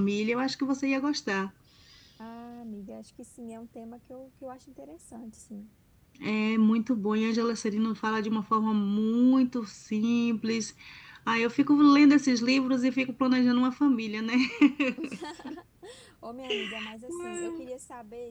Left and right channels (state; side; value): identical; both; correlation 1.00